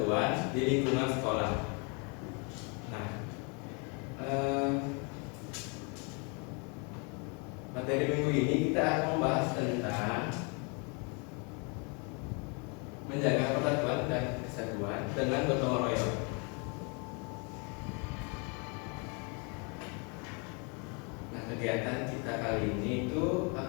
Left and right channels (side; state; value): right; quieter; 34.0 dB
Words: di lingkungan sekolah. Nah, materi minggu ini kita akan membahas tentang menjaga persatuan dan kesatuan dengan gotong royong. Nah, kegiatan kita kali ini itu